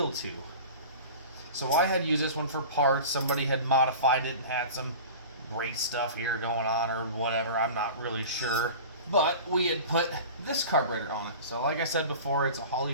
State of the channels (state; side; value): inverted; both; correlation -0.37